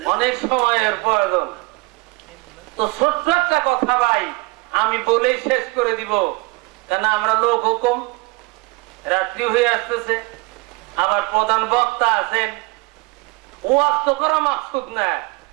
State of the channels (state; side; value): quieter; left; 25.3 dB